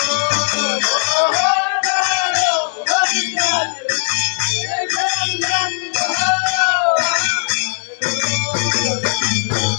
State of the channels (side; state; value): right; silent; digital silence